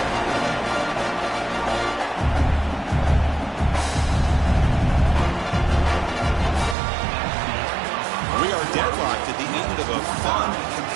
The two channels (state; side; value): drops out; left; at 6.8 s